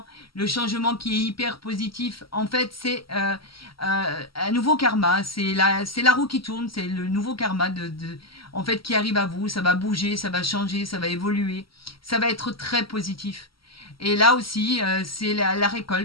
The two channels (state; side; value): late; right; 0.74 ms